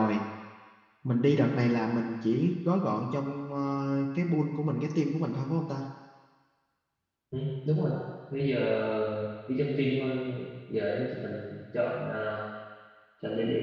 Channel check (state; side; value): identical; both; correlation 1.00